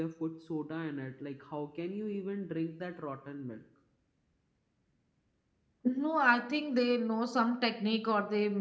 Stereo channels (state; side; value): identical; both; correlation 1.00